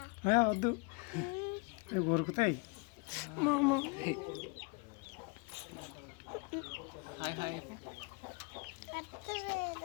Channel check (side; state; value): right; quieter; 32.8 dB